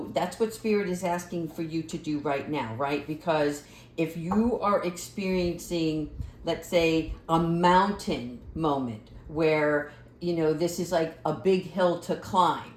that's what Spirit is asking for you to do right now, right? Because if you are experiencing, let's say, a mountain moment where this is like a big hill to climb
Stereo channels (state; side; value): identical; both; correlation 1.00